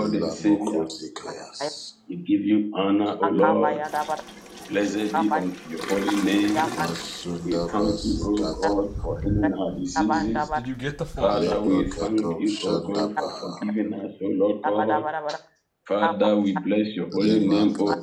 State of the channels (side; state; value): both; identical; correlation 1.00